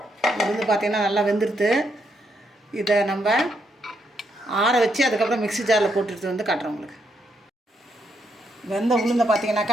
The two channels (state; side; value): normal; both; correlation 0.78